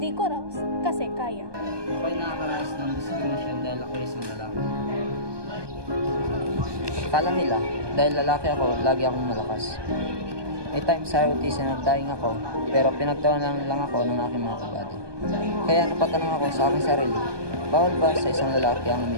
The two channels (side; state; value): left; late; 1.2 ms